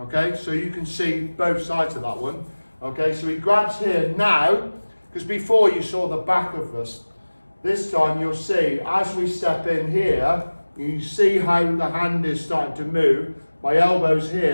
So you can see both sides of that one, okay? So he grabs here now, because before you saw the back of us. This time you'll see, as we step in here, you see how the hand is starting to move. My elbow's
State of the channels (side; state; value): both; inverted; correlation -1.00